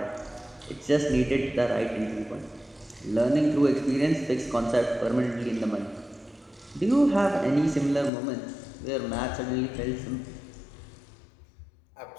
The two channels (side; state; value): right; drops out; at 8.1 s